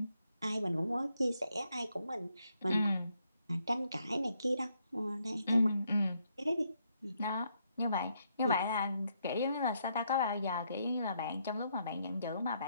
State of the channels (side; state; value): both; inverted; correlation -0.75